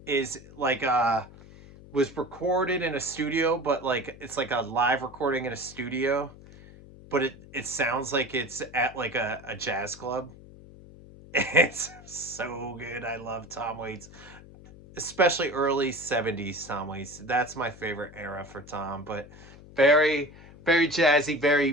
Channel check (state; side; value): noise; left; hum, 19 dB below the sound